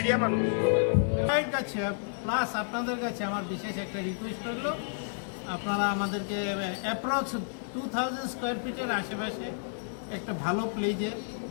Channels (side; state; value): right; silent; digital silence